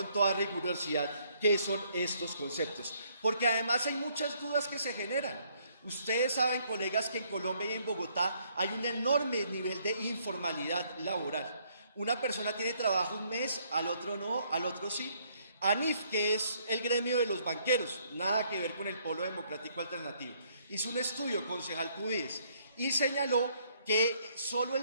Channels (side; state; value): both; inverted; correlation -0.68